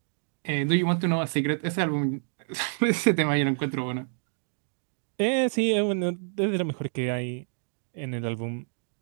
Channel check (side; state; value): left; silent; 59 dB below the other